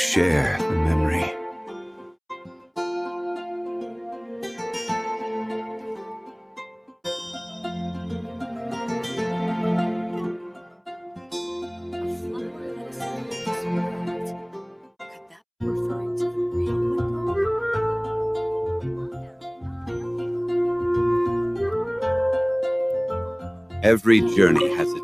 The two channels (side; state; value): both; identical; correlation 1.00